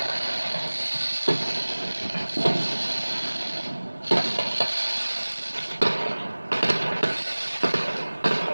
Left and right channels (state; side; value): inverted; both; correlation -1.00